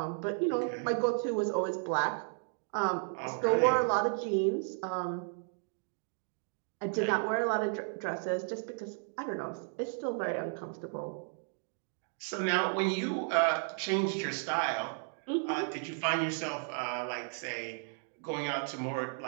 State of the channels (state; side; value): silent; left; 55 dB below the other